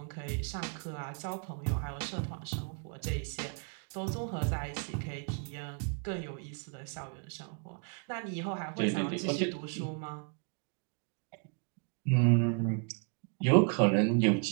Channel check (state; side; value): quieter; left; 39.5 dB